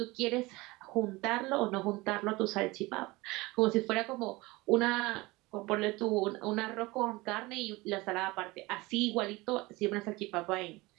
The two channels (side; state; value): left; quieter; 22.0 dB